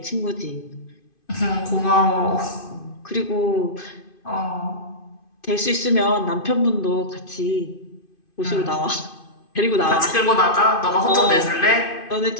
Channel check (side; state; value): right; late; 2.5 ms